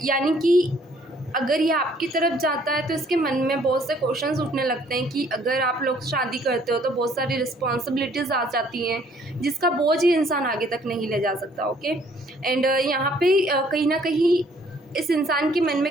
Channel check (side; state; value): both; normal; correlation 0.61